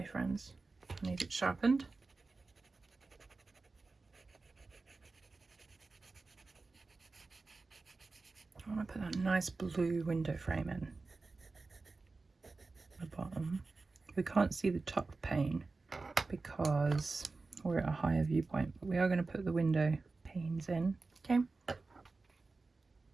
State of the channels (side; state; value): left; quieter; 3.8 dB